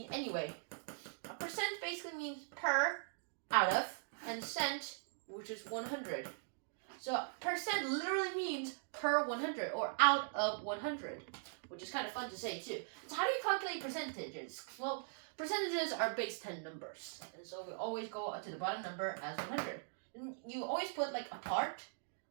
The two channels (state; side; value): silent; left; digital silence